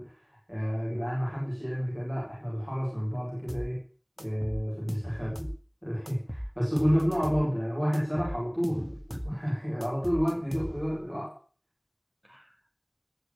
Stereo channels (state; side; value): identical; both; correlation 1.00